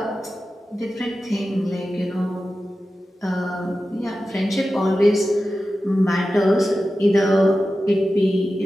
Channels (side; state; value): both; normal; correlation 0.93